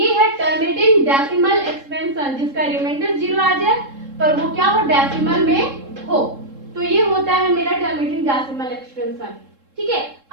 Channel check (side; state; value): left; late; 3.7 ms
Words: है टर्मिनेटिंग डेसिमल एक्सपेंशन जिसका रिमाइंडर 0 आ जाए पर वो क्या हो, डेसिमल में हो। तो ये होता है मेरा टर्मिनेटिंग डेसिमल एक्सपेंशन, ठीक है।